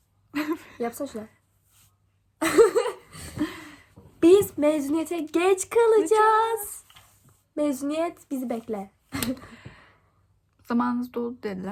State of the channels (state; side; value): identical; both; correlation 1.00